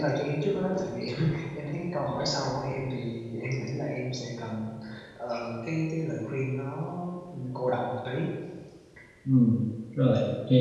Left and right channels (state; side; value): identical; both; correlation 1.00